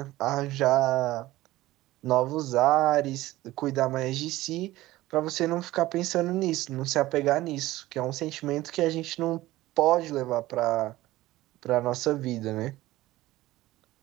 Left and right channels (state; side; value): quieter; left; 17.0 dB